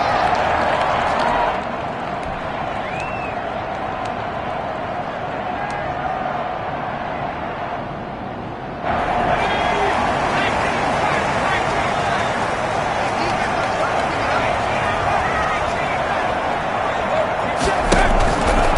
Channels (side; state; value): both; identical; correlation 1.00